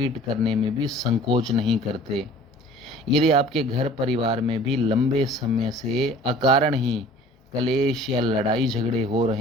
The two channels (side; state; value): both; normal; correlation 0.48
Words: करने में भी संकोच नहीं करते। यदि आपके घर परिवार में भी लंबे समय से अकारण ही कलेश या लड़ाई झगड़े हो